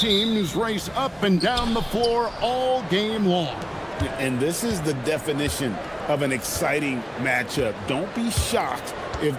race up and down the floor all game long. And this is the definition of an exciting matchup. Don't be shocked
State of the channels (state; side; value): identical; both; correlation 1.00